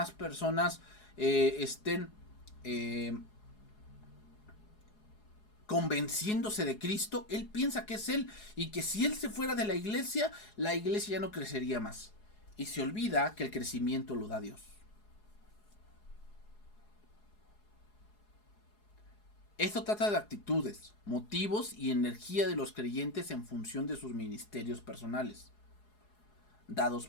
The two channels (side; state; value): right; late; 4.8 ms